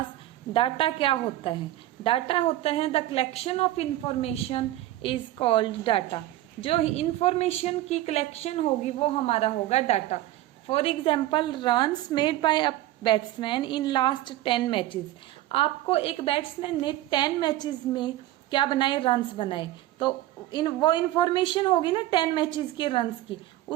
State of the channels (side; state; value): left; quieter; 15.1 dB